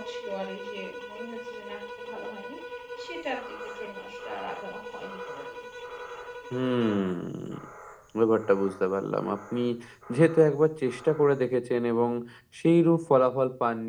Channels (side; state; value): both; identical; correlation 1.00